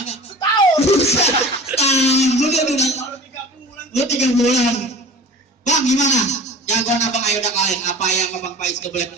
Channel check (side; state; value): both; normal; correlation 0.40